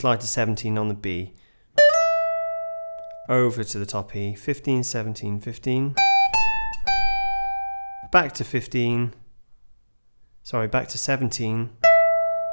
to 17 on the B. Over to the top E, 15, 17, 15. Back to 15. Sorry, back to 17.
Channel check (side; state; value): both; inverted; correlation -1.00